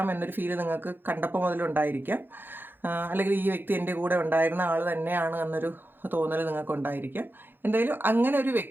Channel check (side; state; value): left; late; 0.097 ms